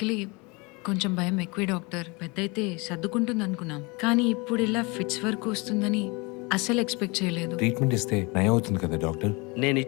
కొంచెం భయం ఎక్కువే డాక్టర్. పెద్దయితే సర్దుకుంటుంది అనుకున్నాం, కానీ ఇప్పుడు ఇలా ఫిట్స్ వరకు వస్తుందని అస్సలు ఎక్స్పెక్ట్ చేయలేదు. ట్రీట్మెంట్ ఇస్తే నయం అవుతుంది కదా డాక్టర్? నేను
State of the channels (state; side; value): quieter; right; 27.4 dB